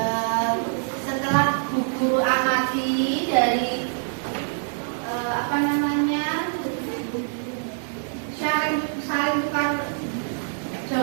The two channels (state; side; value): silent; left; digital silence